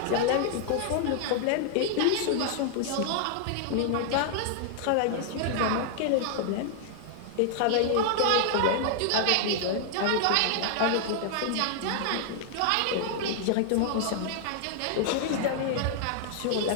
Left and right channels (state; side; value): different; both; correlation -0.01